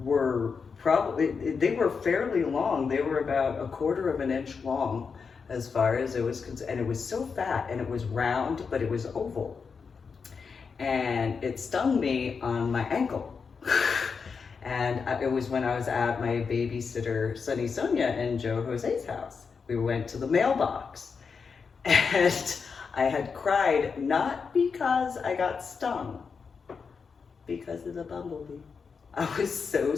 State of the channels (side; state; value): right; quieter; 5.5 dB